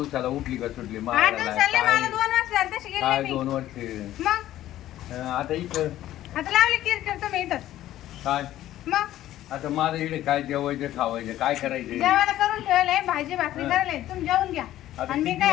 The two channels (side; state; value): right; quieter; 13.6 dB